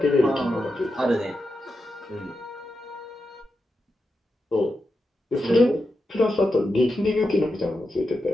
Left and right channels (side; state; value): both; normal; correlation 0.88